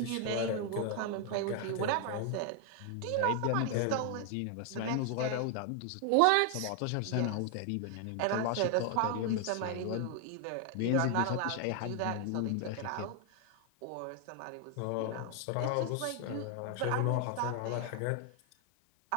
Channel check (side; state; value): both; different; correlation 0.00